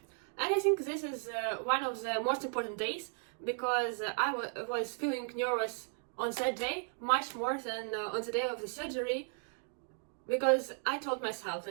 And I think this is one of the most important days, because I was feeling nervous on that day much more than on the day of the surgery, because I told myself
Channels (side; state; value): left; silent; 54 dB below the other